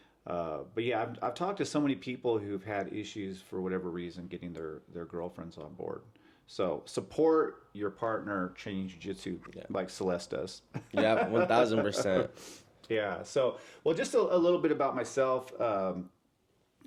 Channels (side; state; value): both; identical; correlation 1.00